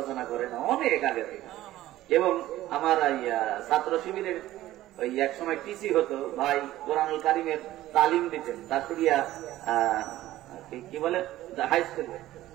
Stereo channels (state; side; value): quieter; left; 15.0 dB